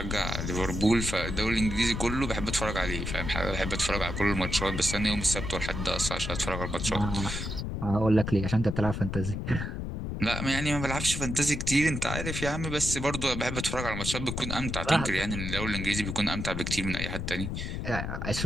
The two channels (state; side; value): noise; left; rumble, 4 dB below the sound